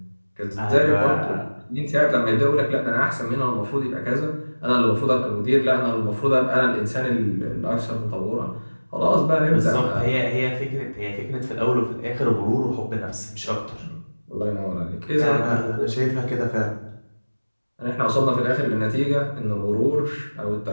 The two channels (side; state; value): both; inverted; correlation -1.00